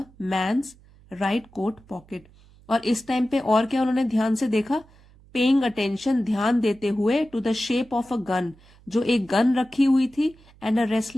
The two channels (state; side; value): noise; right; hum, 26 dB below the sound